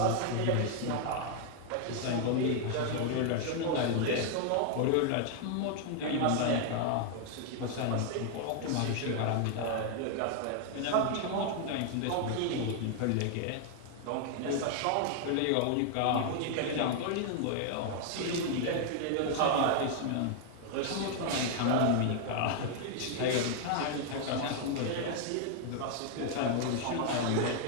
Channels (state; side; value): different; both; correlation 0.00